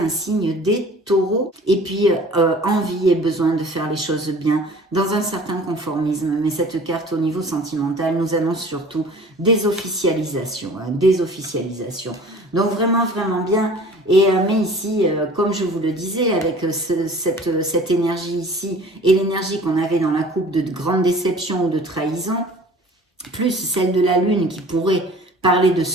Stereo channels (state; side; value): normal; both; correlation 0.46